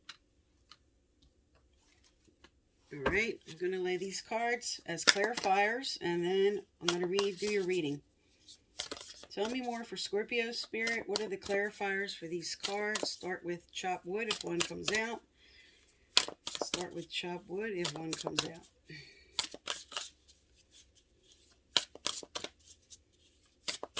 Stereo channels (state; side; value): identical; both; correlation 1.00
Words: All right, I'm going to lay these cards as clarifiers, and then I'm going to do your reading. Tell me more for Scorpio Spirit. What are the clarifiers for these cards? Start with chop wood if one comes out. Start with chop wood if one comes out.